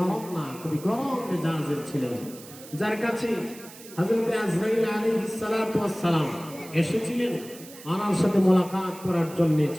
না, খুবই গরম মেজাজের ছিলেন, যার কাছে হযরত আজরাইল আলাইহিস সালাতু ওয়াস সালাম এসেছিলেন ওনার সাথে মোলাকাত করার জন্য।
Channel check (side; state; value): right; noise; hiss, 18 dB below the sound